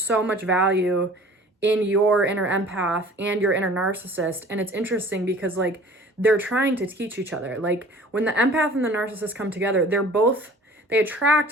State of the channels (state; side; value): normal; both; correlation 0.47